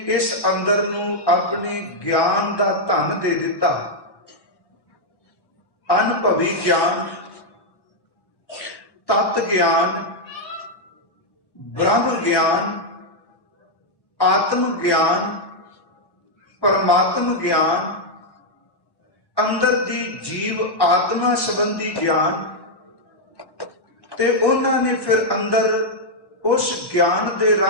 ਇਸ ਅੰਦਰ ਨੂੰ ਆਪਣੇ ਗਿਆਨ ਦਾ ਧਨ ਦੇ ਦਿੱਤਾ, ਅਨੁਭਵੀ ਗਿਆਨ, ਤਤ ਗਿਆਨ, ਬ੍ਰਹਮ ਗਿਆਨ, ਆਤਮ ਗਿਆਨ, ਪਰਮਾਤਮ ਗਿਆਨ, ਅੰਦਰ ਦੀ ਜੀਵ ਆਤਮਾ ਸੰਬੰਧੀ ਗਿਆਨ, ਤੇ ਉਹਨਾਂ ਨੇ ਫਿਰ ਅੰਦਰ ਉਸ ਗਿਆਨ ਦੇ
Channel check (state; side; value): late; right; 1.1 ms